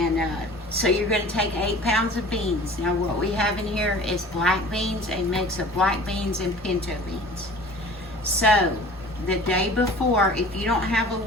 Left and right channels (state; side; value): normal; both; correlation 0.44